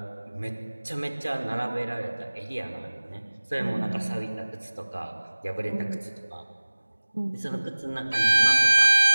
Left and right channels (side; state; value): both; inverted; correlation -1.00